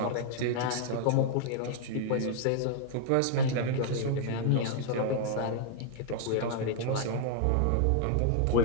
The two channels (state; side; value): different; both; correlation -0.01